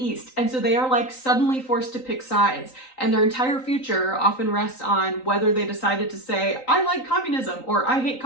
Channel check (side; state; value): right; late; 3.9 ms